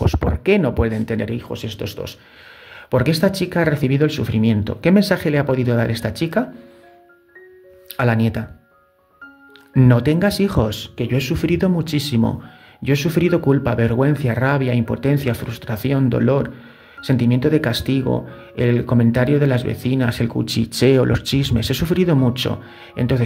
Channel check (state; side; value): identical; both; correlation 1.00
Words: ¿Por qué no pueden tener hijos estos dos? Porque esta chica ha recibido el sufrimiento. ¿Qué mensaje le ha podido dar esta chica a la nieta? No tengas hijos, que yo he sufrido muchísimo. Yo he sufrido culpa, vergüenza, rabia, impotencia, frustración, dolor, sentimiento de castigo, el comentario de las vecinas, el cuchicheo, los chismes. He sufrido mucho.